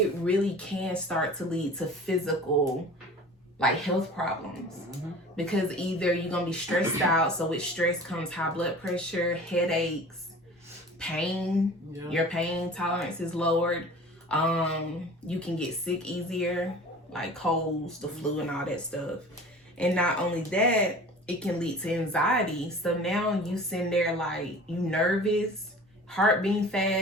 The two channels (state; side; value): normal; both; correlation 0.41